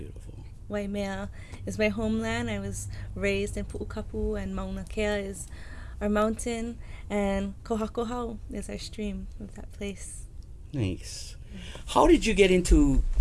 Waimea is my homeland. I was raised in Pu'ukapu, and Mauna Kea is our mountain, and Kohakohau is our stream of that place. Nice. How did you get into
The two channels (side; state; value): both; identical; correlation 1.00